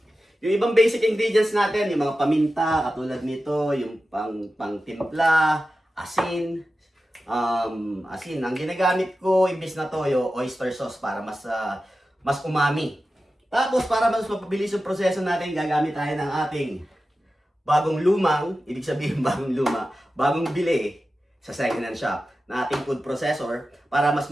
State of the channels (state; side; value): normal; both; correlation 0.93